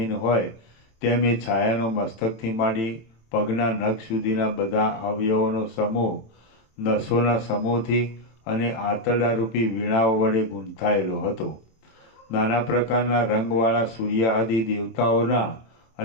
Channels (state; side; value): late; right; 27 ms